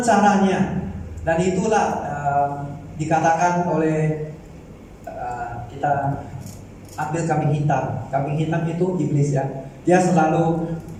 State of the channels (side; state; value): both; identical; correlation 1.00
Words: caranya. Dan itulah dikatakan oleh kita ambil kambing hitam. Kambing hitam itu iblis ya. Dia selalu